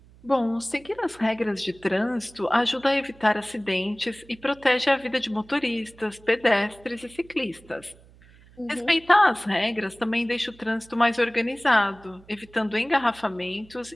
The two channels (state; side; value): noise; right; hum, 25 dB below the sound